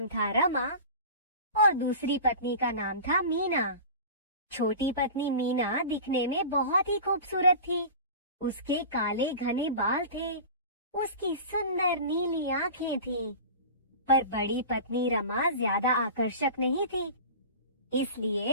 था रमा और दूसरी पत्नी का नाम था मीना। छोटी पत्नी मीना दिखने में बहुत ही खूबसूरत थी। उसके काले घने बाल थे। उसकी सुंदर नीली आंखें थीं। पर बड़ी पत्नी रमा ज्यादा आकर्षक नहीं थी,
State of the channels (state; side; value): inverted; both; correlation -0.35